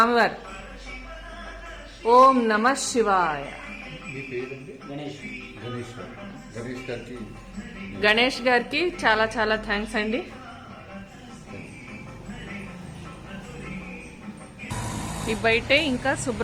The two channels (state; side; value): identical; both; correlation 1.00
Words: ఓం నమ శివాయ. గణేష్ గారికి చాలా థ్యాంక్స్ అండి. ఈ బయటే ఇంకా